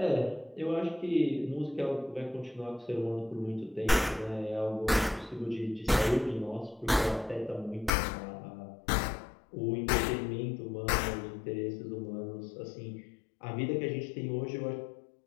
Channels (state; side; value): drops out; right; at 7.9 s